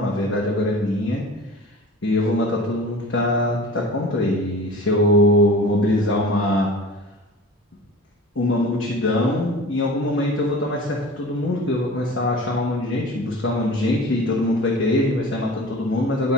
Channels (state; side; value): normal; both; correlation 0.39